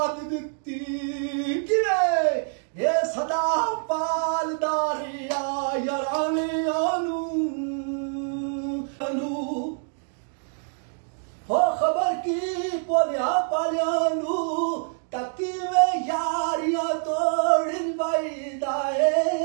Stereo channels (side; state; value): left; silent; 61 dB below the other